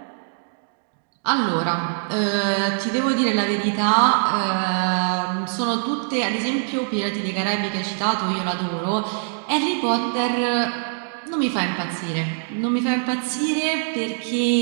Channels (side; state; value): left; silent; digital silence